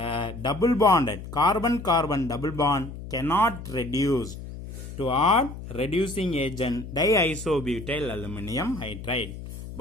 double bonded carbon-carbon double bond cannot reduce to add reducing agent diisobutyl aluminum hydride,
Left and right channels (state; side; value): noise; left; hum, 11 dB below the sound